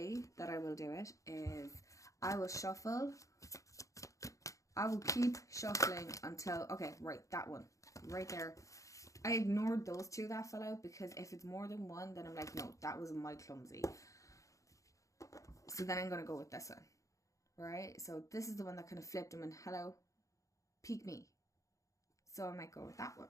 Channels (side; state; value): right; late; 0.16 ms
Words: that I will do it is I will shuffle. I will keep shuffling until, okay, right, that one, right there. I ignored those two that fell out because if it's more than one, then I'm like, no, that was my clumsy. So then I'm going to go with this one, right? So this is the one that kind of flipped them and hello, peek me. So I might go with that one,